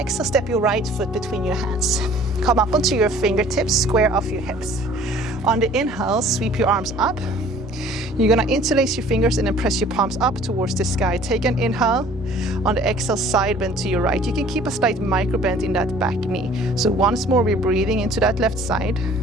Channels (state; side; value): normal; both; correlation 0.52